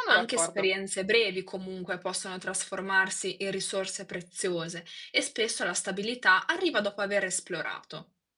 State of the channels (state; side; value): identical; both; correlation 1.00